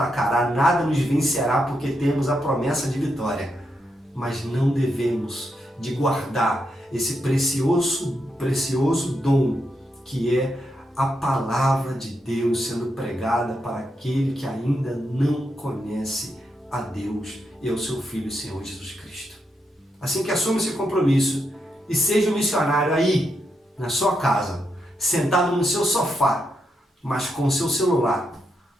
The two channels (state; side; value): normal; both; correlation 0.83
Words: nada nos vencerá, porque temos a promessa de vitória. Mas não devemos de guardar esse precioso dom que é a palavra de Deus sendo pregada para aquele que ainda não conhece a Deus e ao seu Filho, Senhor Jesus Cristo. Assim que assuma esse compromisso e seja um missionário aí, na sua casa, sentado no seu sofá, mas com o seu celular,